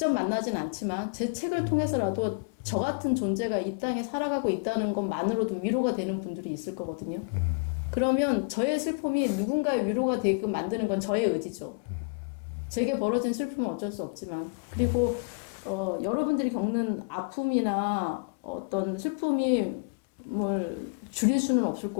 만나진 않지만 제 책을 통해서라도 저 같은 존재가 이 땅에 살아가고 있다는 것만으로도 위로가 되는 분들이 있을 거거든요. 그러면 저의 슬픔이 누군가의 위로가 되게끔 만드는 건 저의 의지죠. 제게 벌어진 슬픔은 어쩔 수 없지만. 그리고 여러분들이 겪는 아픔이나 어떤 슬픔이 뭘 줄일 수는 없을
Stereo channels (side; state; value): right; quieter; 35.8 dB